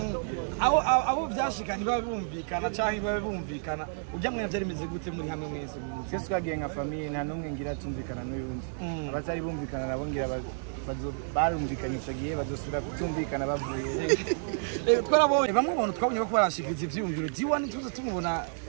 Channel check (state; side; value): silent; left; digital silence